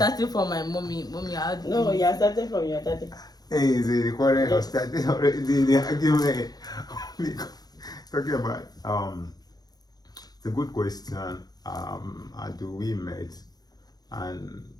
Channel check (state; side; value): late; right; 0.19 ms